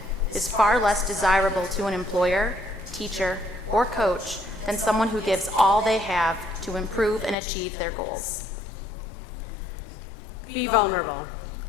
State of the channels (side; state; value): right; drops out; at 7.4 s